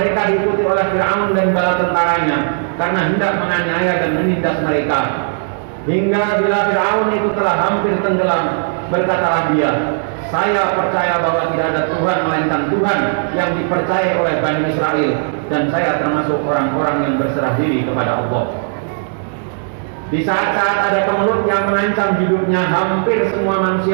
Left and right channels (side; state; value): left; silent; digital silence